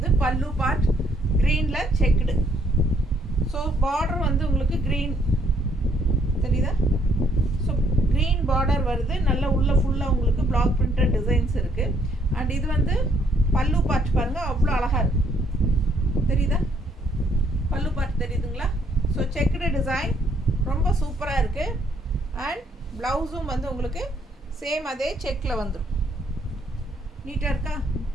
பல்லு பார்ட் க்ரீனில் செக்குடு. ஸோ பார்டர் வந்து உங்களுக்கு க்ரீன் தெரியுதா? ஸோ க்ரீன் பார்டர் வருது. நல்ல உள்ள ஃபுல்லாக உங்களுக்கு பிளாக் பிரிண்டட் டிசைன்ஸ் இருக்குது. அண்ட் இது வந்து பல்லு பார்ட் பாருங்கள், அவ்வளோ அழகாக இருக்குது. தெரியுதா? பல்லு பார்ட் தெரியுதுங்களா? ஸோ செக்குடு டிசைன் ரொம்ப சூப்பராக இருக்குது. அண்ட் ப்ளவுஸும் வந்து உங்களுக்கு சேம் அதே செக்கில் வந்துடும். நீட்டாக இருக்கா?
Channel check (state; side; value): normal; both; correlation 0.68